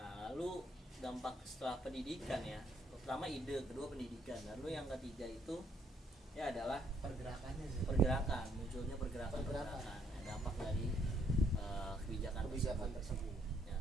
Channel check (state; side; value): normal; both; correlation 0.70